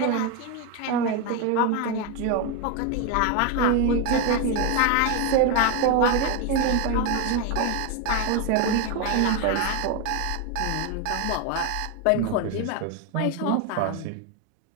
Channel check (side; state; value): both; different; correlation 0.02